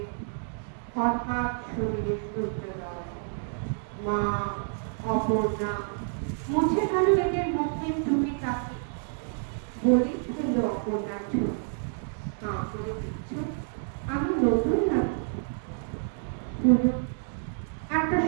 হঠাৎ শরীরে সূর্যোদয়। মা অপর্ণা মুছে গেল এদের মুখের টুপি কাকে, বলি ফেলল অপর্ণার ছবি। হাঁ করে দিচ্ছ, আমি নতুন নাকি? একটা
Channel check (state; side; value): silent; left; digital silence